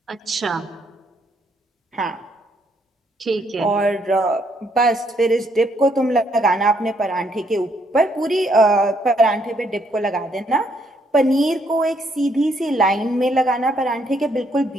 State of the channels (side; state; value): both; normal; correlation 0.71